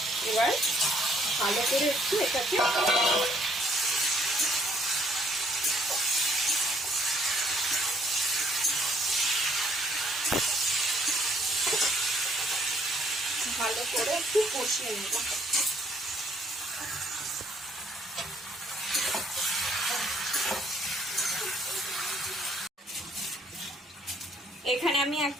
এবার ভালো করে একটু এটাকে ভালো করে একটু কষিয়ে নেব। এখানে আমি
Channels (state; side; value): normal; both; correlation 0.65